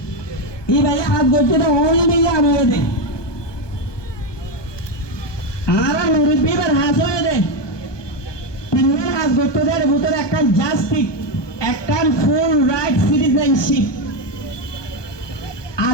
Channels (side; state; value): right; late; 1.2 ms